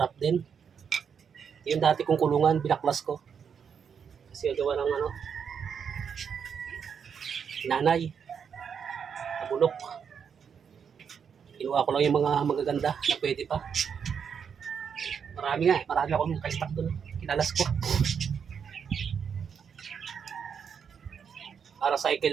din. Yung dati kong kulungan, binaklas ko. Kasi gawa ng nanay. Nabulok. Kinuha ko lang yung mga magaganda na pwede pa. Marami akong naka-stock doon. Kinalas ko. Para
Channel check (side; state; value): left; quieter; 7.1 dB